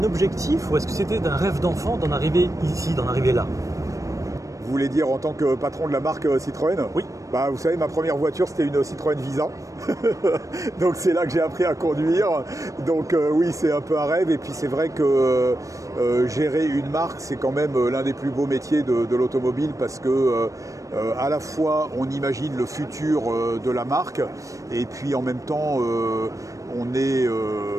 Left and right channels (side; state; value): left; late; 0.16 ms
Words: objectif ou est-ce que c'était un rêve d'enfant d'en arriver ici, d'en arriver là? Vous voulez dire en tant que patron de la marque Citroën? Oui. Bah, vous savez, ma première voiture, c'était une Citroën Visa. Donc c'est là que j'ai appris à conduire. Donc oui, c'est un peu un rêve. Et puis c'est vrai que gérer une marque, c'est quand même l'un des plus beaux métiers de l'automobile parce que à la fois on imagine le futur de la marque et puis en même temps on est